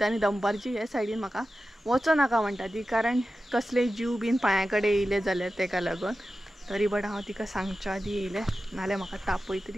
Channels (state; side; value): normal; both; correlation 0.93